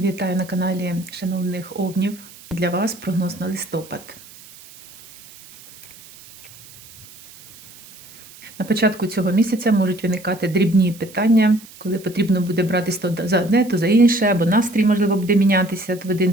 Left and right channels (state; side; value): noise; right; hiss, 21 dB below the sound